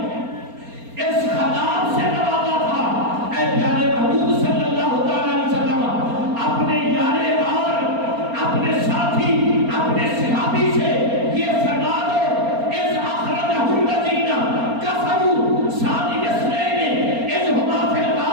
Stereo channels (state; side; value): late; left; 4.3 ms